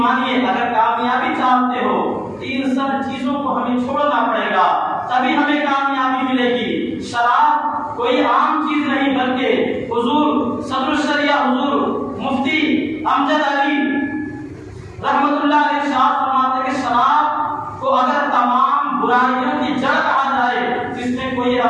اگر کامیابی چاہتے ہو تو ان سب چیزوں کو ہمیں چھوڑنا پڑے گا، تبھی ہمیں کامیابی ملے گی۔ شراب کوئی عام چیز نہیں، بلکہ حضور صدر الشریعہ حضور مفتی امجد علی رحمت اللہ علیہ ارشاد فرماتے ہیں کہ شراب کو اگر تمام برائیوں کی جڑ کہا جائے تو اس میں کوئی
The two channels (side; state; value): both; identical; correlation 1.00